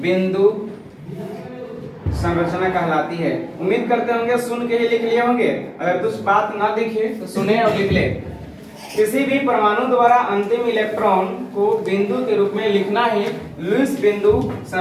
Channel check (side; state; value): both; identical; correlation 1.00